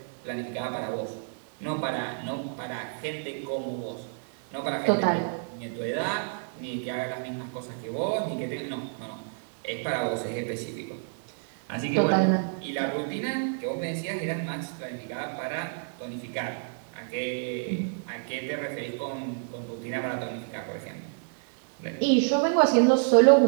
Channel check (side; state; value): left; silent; digital silence